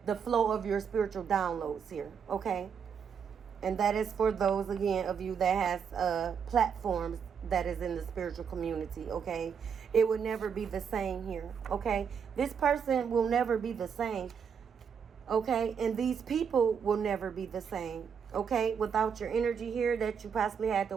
the flow of your spiritual downloads here, okay? And that is for those, again, of you that has platforms that is in the spiritual community, okay? It would never be the same here, okay? This person will never be the same, okay? And these people will never be the same, okay? Without your energy here that you possibly had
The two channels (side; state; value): left; quieter; 6.9 dB